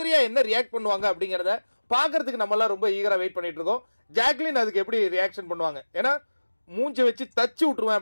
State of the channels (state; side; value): inverted; both; correlation -1.00